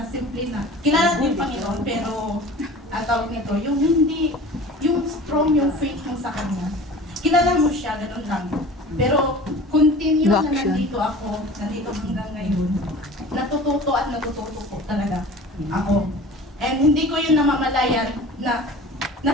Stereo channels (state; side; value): normal; both; correlation 0.40